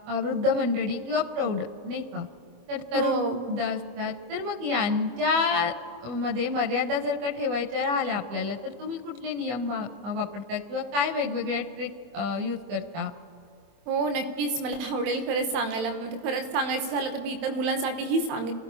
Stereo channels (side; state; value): left; late; 25 ms